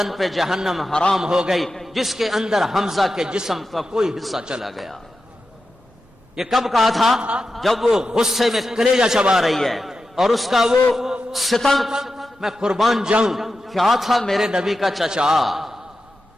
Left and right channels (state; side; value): normal; both; correlation 0.91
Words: پہ جہنم حرام ہو گئی جس کے اندر حمزہ کے جسم کا کوئی حصہ چلا گیا۔ یہ کب کہا تھا؟ جب وہ غصے میں کلیجہ چبا رہی ہے، اور اس کا وہ ستم، میں قربان جاؤں، کیا تھا میرے نبی کا چچا،